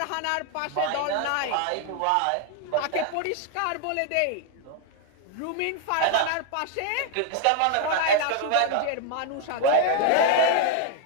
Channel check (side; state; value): both; different; correlation 0.00